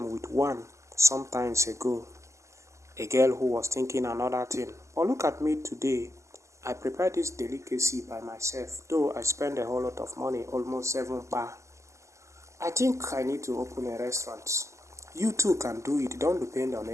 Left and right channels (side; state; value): left; late; 0.14 ms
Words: with one sometimes ago. A girl who was thinking another thing. But look at me today. I prepared this delicacy by myself, though I spent a whole lot of money, almost 7 bar. I think I need to open a restaurant. You too can do it, don't depend on